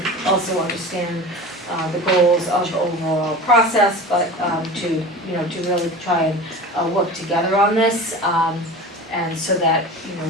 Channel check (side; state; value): both; normal; correlation 0.34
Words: also understand the goals of the overall process, but to really try and work together on this, and so that